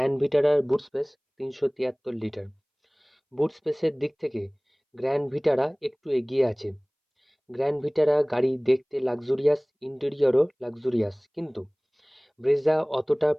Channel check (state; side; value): identical; both; correlation 1.00